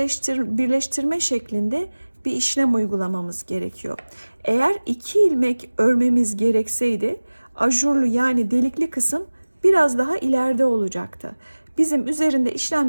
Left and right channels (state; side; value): inverted; both; correlation -1.00